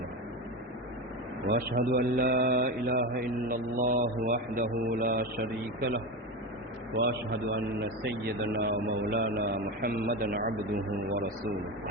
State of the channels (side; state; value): both; normal; correlation 0.20